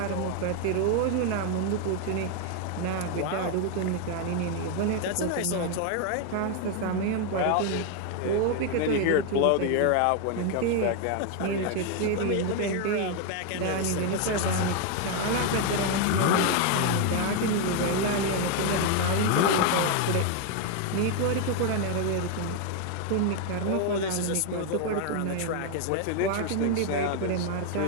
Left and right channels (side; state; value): both; different; correlation 0.01